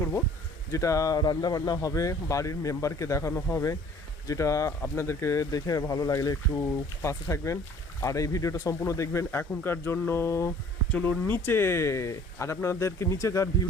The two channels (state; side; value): normal; both; correlation 0.52